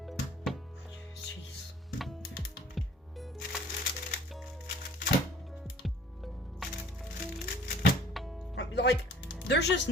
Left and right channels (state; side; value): normal; both; correlation 0.51